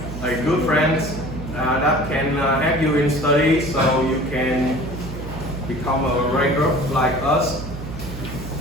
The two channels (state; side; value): noise; right; hum, 9 dB below the sound